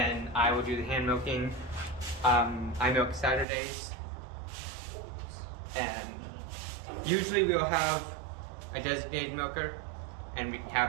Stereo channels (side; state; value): left; drops out; at 3.5 s